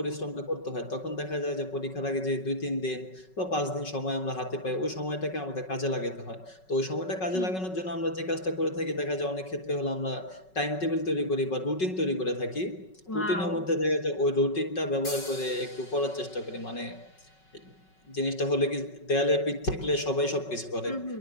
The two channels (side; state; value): right; late; 5.4 ms